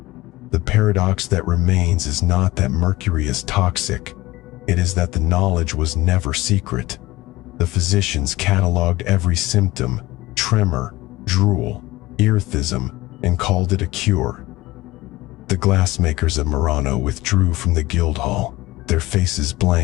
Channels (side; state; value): right; quieter; 18.9 dB